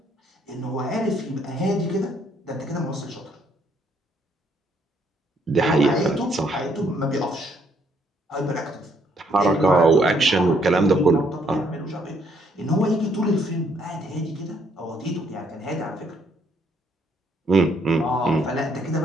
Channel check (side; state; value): both; normal; correlation 0.69